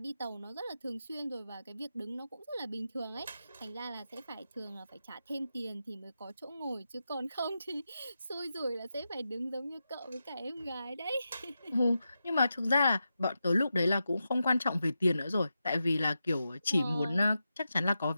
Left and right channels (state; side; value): inverted; both; correlation -0.89